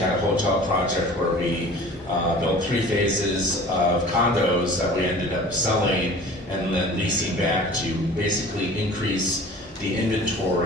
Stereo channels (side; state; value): both; normal; correlation 0.43